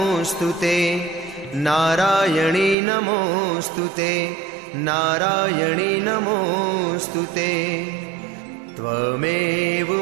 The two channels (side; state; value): left; drops out; at 2.8 s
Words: नारायणी नमोऽस्तुते नारायणी नमोऽस्तुते। त्वमेव